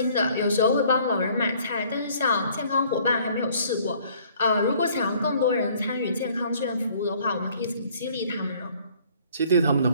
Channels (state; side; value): inverted; both; correlation -0.58